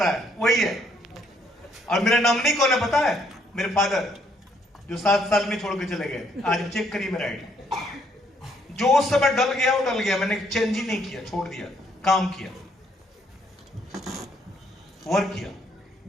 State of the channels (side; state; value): both; normal; correlation 0.69